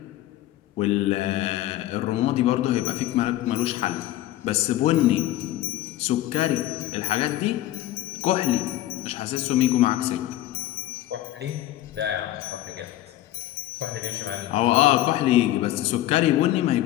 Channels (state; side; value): quieter; right; 14.5 dB